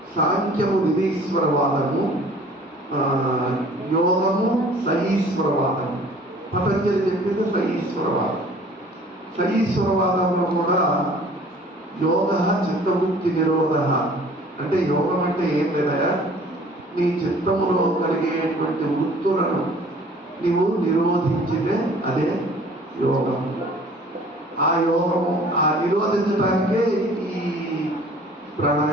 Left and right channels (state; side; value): normal; both; correlation 0.51